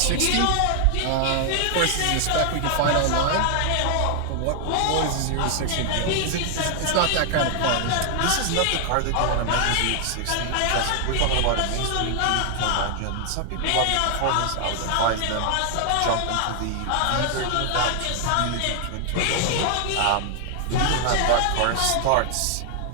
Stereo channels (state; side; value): different; both; correlation 0.00